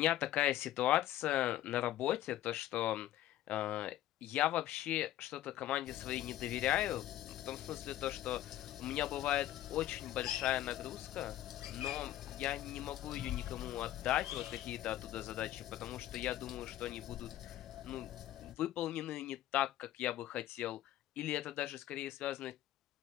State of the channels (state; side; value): quieter; right; 13.6 dB